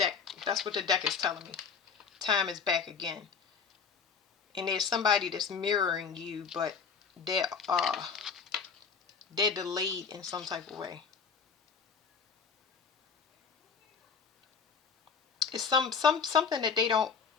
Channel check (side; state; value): right; quieter; 6.0 dB